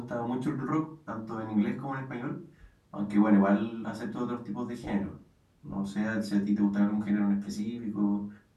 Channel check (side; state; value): both; identical; correlation 1.00